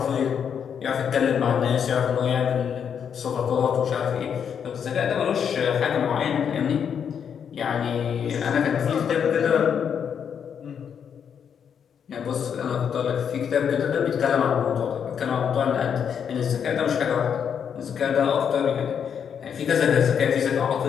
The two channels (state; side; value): quieter; right; 7.7 dB